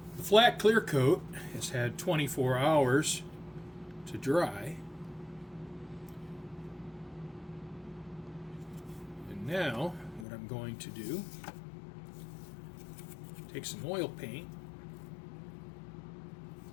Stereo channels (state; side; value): drops out; right; at 10.2 s